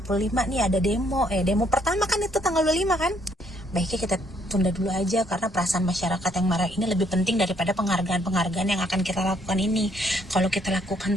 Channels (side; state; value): both; normal; correlation 0.68